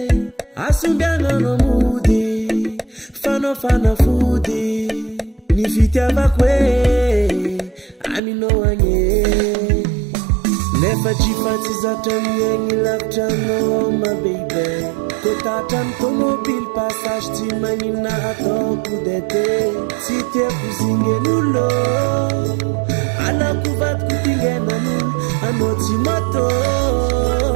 asombiagnano mody fanao fanafody ny fitiavako hoe aminao agne nefa tsy fatsy zatra miegny lavitranao ma baby totatra ny tomobily passage tsy magnina ataoko dete tsy tiako zingen'olo alako vadiko tingenan'olo anao tsy moto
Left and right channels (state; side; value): drops out; left; at 8.2 s